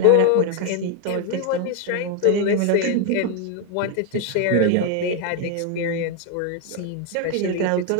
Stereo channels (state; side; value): different; both; correlation 0.01